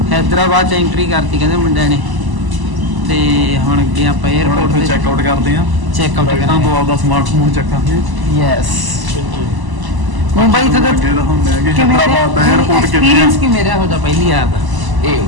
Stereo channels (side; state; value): left; late; 1.0 ms